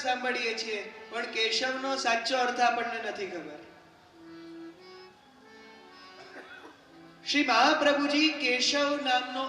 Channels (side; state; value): both; identical; correlation 1.00